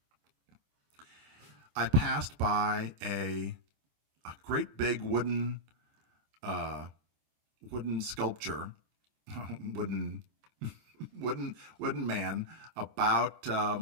I passed by a great big wooden sculpture, wooden wooden man. About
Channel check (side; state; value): left; late; 26 ms